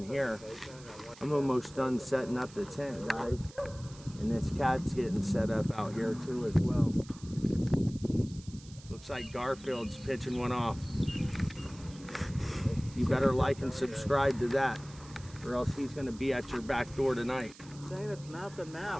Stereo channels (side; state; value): right; noise; hiss, 21 dB below the sound